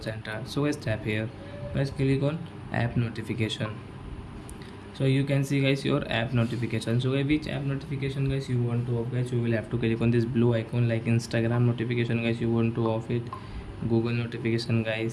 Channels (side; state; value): both; identical; correlation 1.00